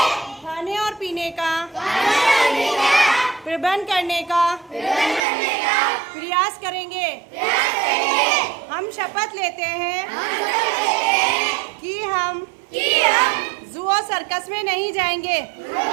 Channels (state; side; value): drops out; left; at 5.2 s